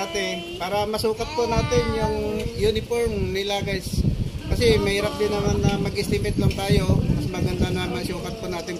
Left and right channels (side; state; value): both; identical; correlation 1.00